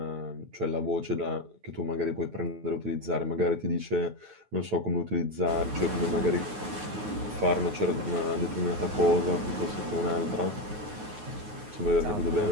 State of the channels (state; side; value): late; left; 9.5 ms